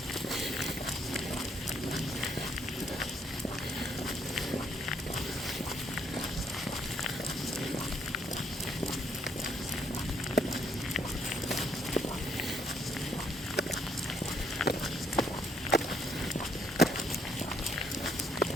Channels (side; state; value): both; normal; correlation 0.69